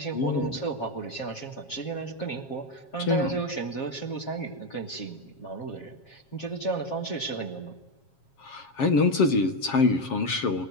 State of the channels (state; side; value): late; right; 7.4 ms